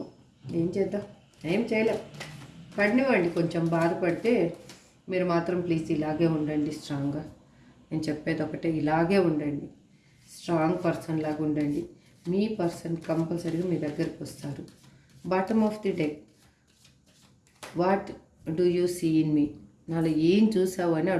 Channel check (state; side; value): identical; both; correlation 1.00